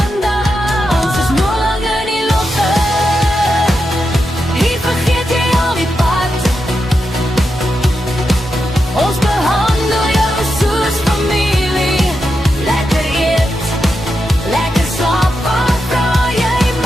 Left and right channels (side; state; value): both; normal; correlation 0.87